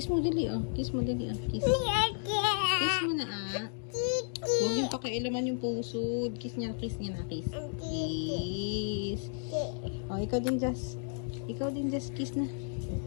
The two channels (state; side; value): silent; right; digital silence